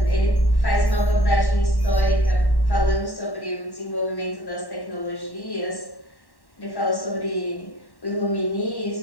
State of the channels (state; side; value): late; right; 1.1 ms